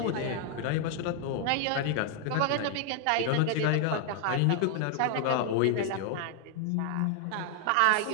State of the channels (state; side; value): different; both; correlation 0.00